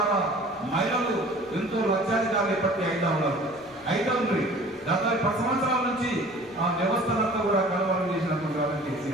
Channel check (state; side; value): noise; left; rumble, 28 dB below the sound